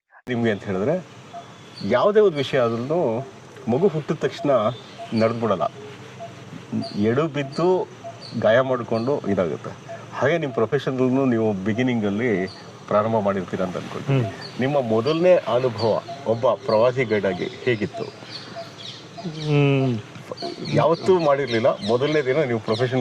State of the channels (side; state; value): both; identical; correlation 1.00